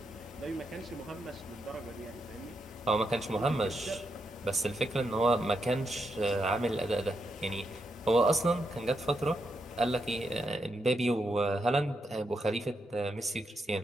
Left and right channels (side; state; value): both; normal; correlation 0.82